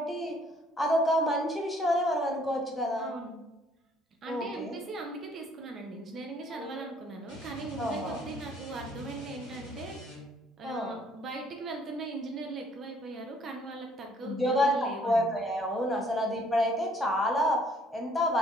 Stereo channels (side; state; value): both; normal; correlation 0.62